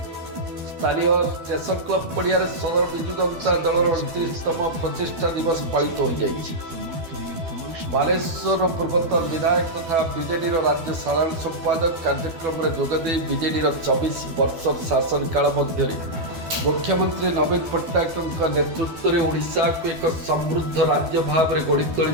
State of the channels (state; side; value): late; left; 12 ms